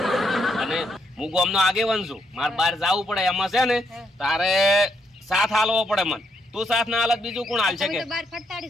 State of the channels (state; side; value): normal; both; correlation 0.76